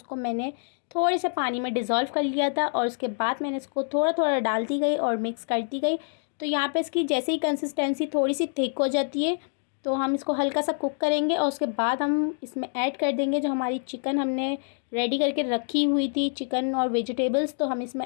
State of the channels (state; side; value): silent; right; digital silence